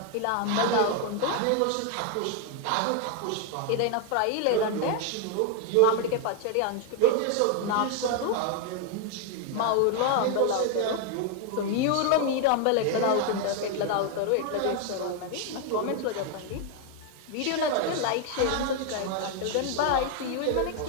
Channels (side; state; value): both; different; correlation 0.01